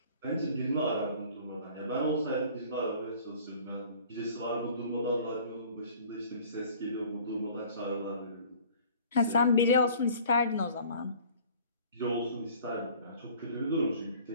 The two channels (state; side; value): inverted; both; correlation -0.50